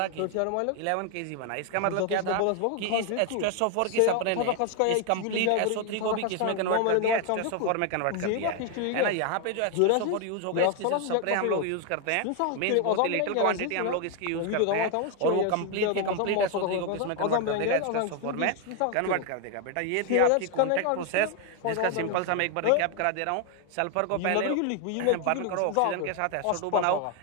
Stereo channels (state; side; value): different; both; correlation 0.01